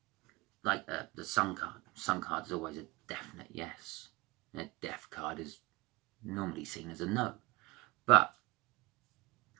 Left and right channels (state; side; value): quieter; left; 23.2 dB